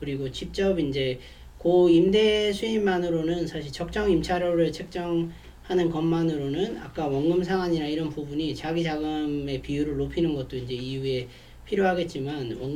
직접 이제 그 임대 수입만으로는 사실 적정 임차료를 책정하는 것만으로는 아까 원금 상환이나 이런 부분이 자기 자금의 비율을 높이는 것도 이제 이후에 필요하겠지만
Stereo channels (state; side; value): identical; both; correlation 1.00